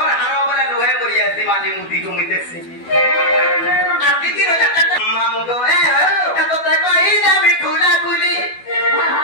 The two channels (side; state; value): right; late; 12 ms